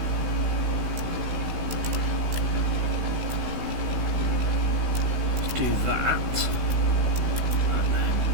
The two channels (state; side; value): late; left; 16 ms